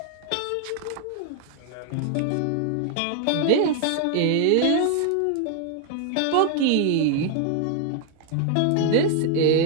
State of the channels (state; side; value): different; both; correlation 0.00